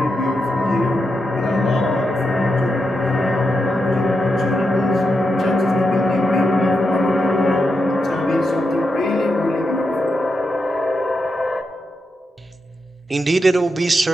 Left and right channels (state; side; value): normal; both; correlation 0.85